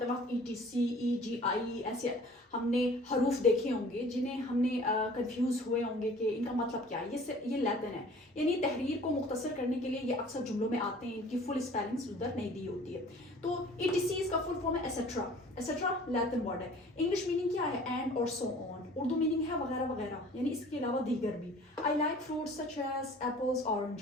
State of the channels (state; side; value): normal; both; correlation 0.48